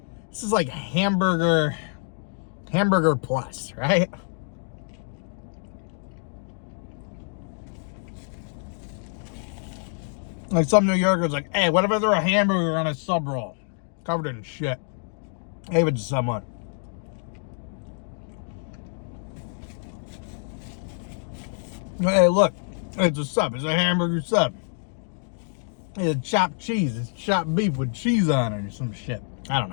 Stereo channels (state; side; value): silent; right; 59 dB below the other